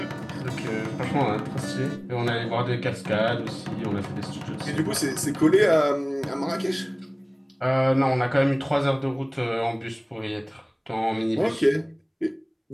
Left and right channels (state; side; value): identical; both; correlation 1.00